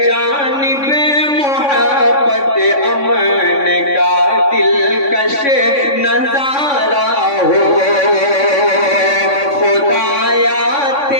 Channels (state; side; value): late; right; 3.5 ms